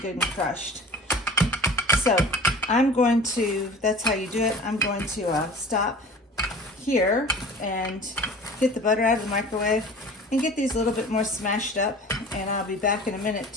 good and crushed. So I'm going to, that's how you do it. I'm going to stop here and get the butter out of the microwave and get these a little bit more smashed up, and I'll be back in a minute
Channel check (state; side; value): normal; both; correlation 0.41